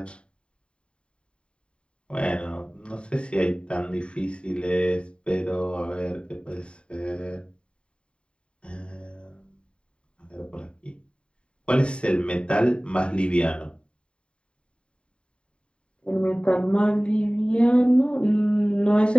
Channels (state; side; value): late; right; 0.054 ms